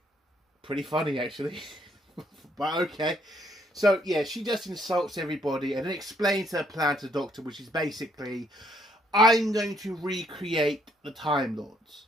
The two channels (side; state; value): both; normal; correlation 0.69